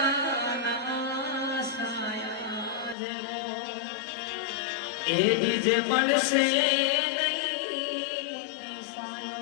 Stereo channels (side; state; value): right; drops out; at 3.0 s